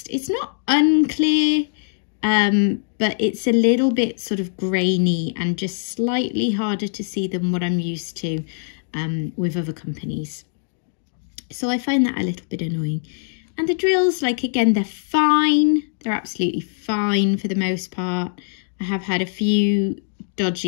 it's not unclear, but it's a little bit sort of grainy and just slightly harder to see than what I'm used to with other companies. So I find that a little bit annoying. And the drills, like, again, they're fine. They're absolutely fine for the most part. I have had a few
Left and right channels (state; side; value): silent; right; digital silence